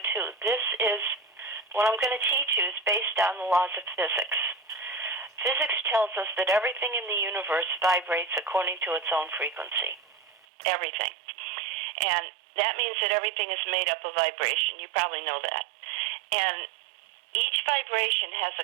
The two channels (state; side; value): drops out; left; at 10.5 s